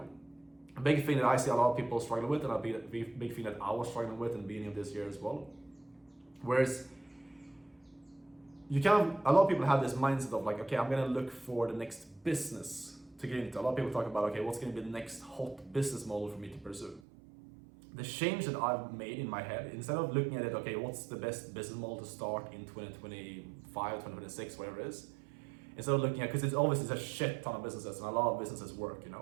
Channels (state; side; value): drops out; left; at 17.0 s